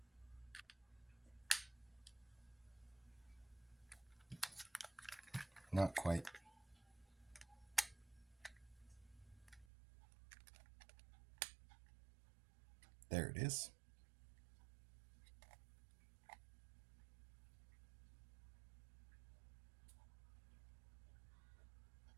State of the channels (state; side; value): drops out; left; at 9.7 s